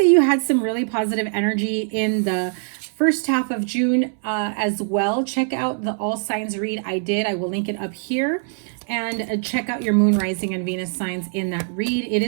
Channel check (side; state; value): left; silent; 62 dB below the other